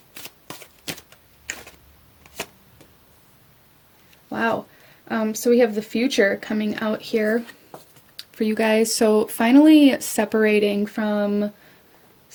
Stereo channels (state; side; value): identical; both; correlation 1.00